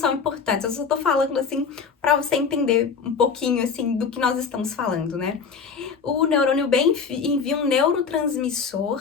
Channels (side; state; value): right; quieter; 5.8 dB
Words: importantes, eu só tô falando assim para você entender um pouquinho assim do que nós estamos falando, né? O neurônio B envia um neurotransmissor,